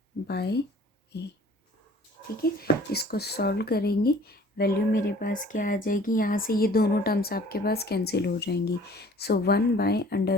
by a. ठीक है, इसको सॉल्व करेंगे, वैल्यू मेरे पास क्या आ जाएगी, यहाँ से ये दोनों टर्म्स आपके पास कैंसिल हो जाएंगी। सो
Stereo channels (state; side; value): normal; both; correlation 0.51